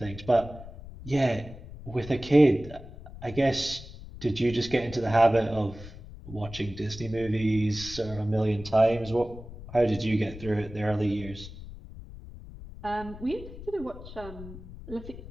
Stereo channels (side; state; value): left; noise; rumble, 14 dB below the sound